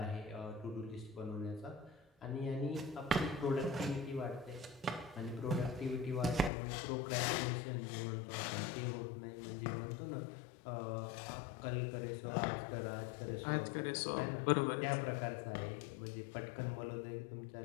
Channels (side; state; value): right; drops out; at 6.5 s